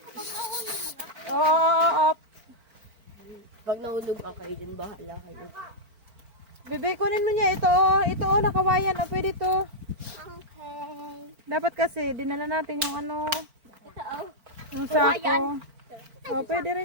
Oo, up. Pag nahulog ka kayo dyan, bahala kayo. Bebe, kunin mo niya ito, oh. Ito, oh, nakawayan. Oh, pwede to. Okay. Dapat kasi, dinala natin yung ano, Ito, oh. yung Kawayan. sako. Oh, pwede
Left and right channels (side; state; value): left; late; 4.5 ms